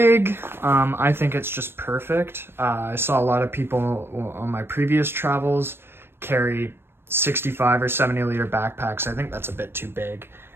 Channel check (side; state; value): left; late; 0.11 ms